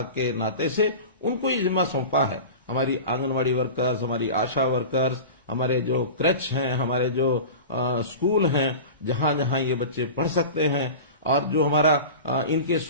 के नाते से उनको ही जिम्मा सौंपा है। हमारी आंगनवाड़ी वर्कर्स, हमारी आशा वर्कर्स, हमारे जो क्रैच हैं, हमारे जो स्कूल हैं, जहां जहां ये बच्चे पढ़ सकते हैं, और जो हमारा इनके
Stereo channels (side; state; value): both; inverted; correlation -0.32